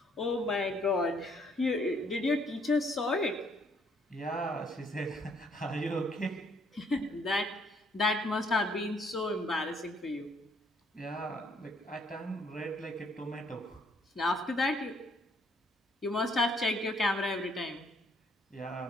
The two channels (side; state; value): both; normal; correlation 0.66